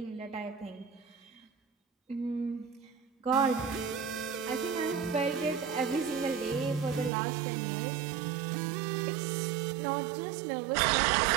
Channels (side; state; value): left; drops out; at 7.1 s